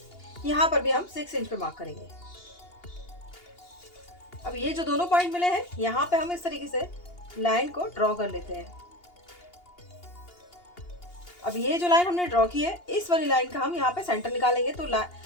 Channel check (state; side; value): late; right; 2.8 ms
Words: यहाँ पर भी हम 6 इंच पे मार्क करेंगे। अब ये जो दोनों पॉइंट मिले हैं यहाँ पे हम इस तरीके से लाइन को ड्रॉ कर लेते हैं। अब ये जो लाइन हमने ड्रॉ की है इस वाली लाइन का हम यहाँ पे सेंटर निकालेंगे। तो